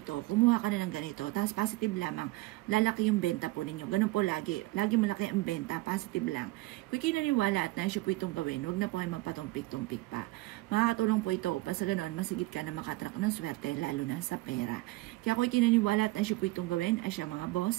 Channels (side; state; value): left; quieter; 20.2 dB